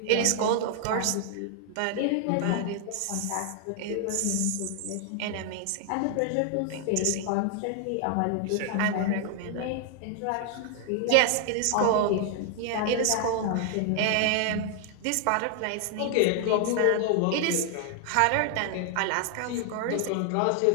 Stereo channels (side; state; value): both; different; correlation 0.00